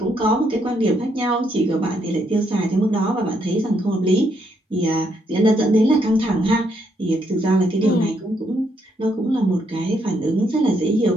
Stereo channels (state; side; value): normal; both; correlation 0.74